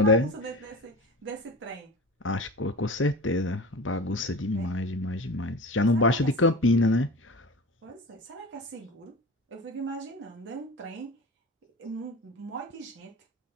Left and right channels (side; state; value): both; normal; correlation 0.32